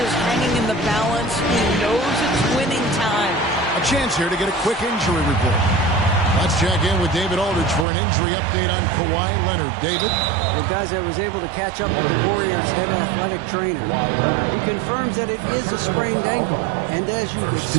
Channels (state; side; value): drops out; left; at 7.9 s